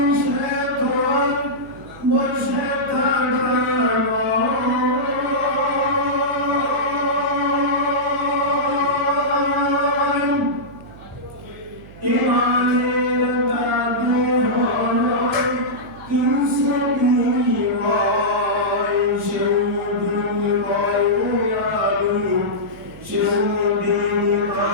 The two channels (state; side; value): noise; right; hum, 19 dB below the sound